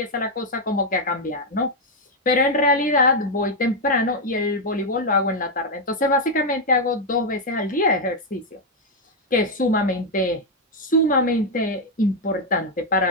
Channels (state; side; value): normal; both; correlation 0.01